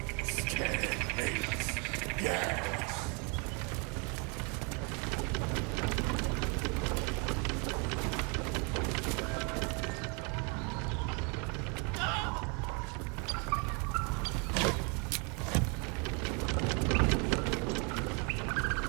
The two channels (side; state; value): left; quieter; 33.5 dB